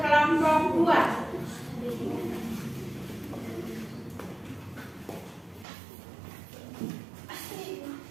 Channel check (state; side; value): drops out; left; at 5.7 s